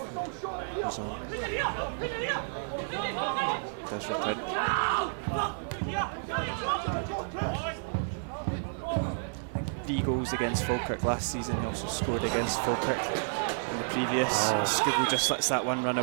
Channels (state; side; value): silent; left; 57 dB below the other